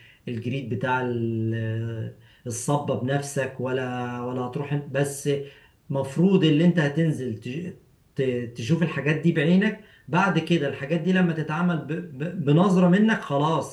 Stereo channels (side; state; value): both; identical; correlation 1.00